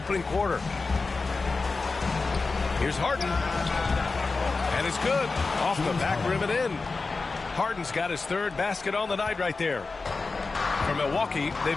quarter. Here's Harden. And it's good. Off the back rim and in. Harden's got his third basket on the night right there. For Milwaukee,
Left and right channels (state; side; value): quieter; right; 4.0 dB